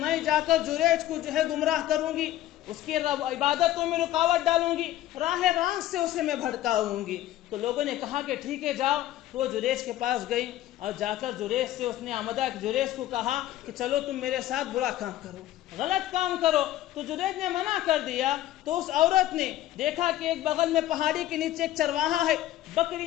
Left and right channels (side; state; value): right; quieter; 13.9 dB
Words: جا کر جریج کو جو ہے گمراہ کروں گی، اس کی عبادتوں میں رکاوٹ ڈالوں گی، راہ راست سے اسے میں بھٹکاؤں گی. تو لوگوں نے کہا کہ ٹھیک ہے جاؤ. تو وہ جریج کے پاس گئی اور جا کر جریج سے اس نے آمدہ جریج کو کہا کہ چلو تم میرے ساتھ برا کام کرو، غلط کام کرو. تو جریج نے منع کر دیا. تو اس عورت نے دیکھا کہ ایک بغل میں پہاڑی کے نیچے ایک چرواہا ہے،